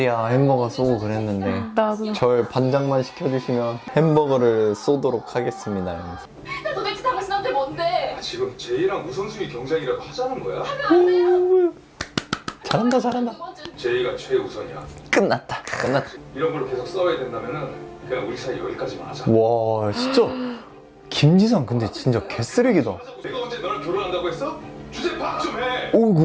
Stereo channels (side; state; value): both; identical; correlation 1.00